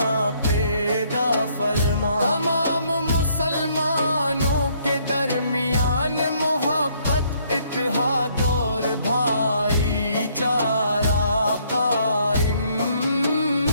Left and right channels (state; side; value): inverted; both; correlation -0.67